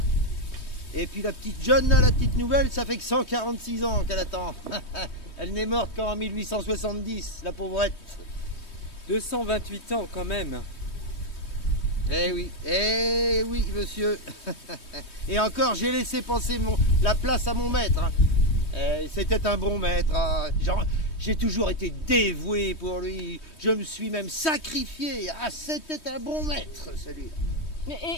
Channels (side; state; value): right; late; 3.2 ms